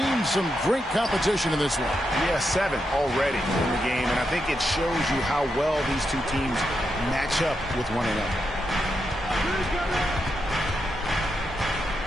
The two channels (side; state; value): both; normal; correlation 0.84